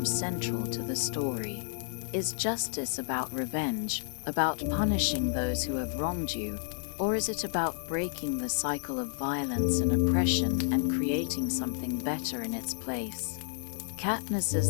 central to the story. Is justice about revenge, about punishing those who have wronged you, or is it about breaking the cycle of violence and oppression and creating something better in its place?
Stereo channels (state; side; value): silent; right; 57 dB below the other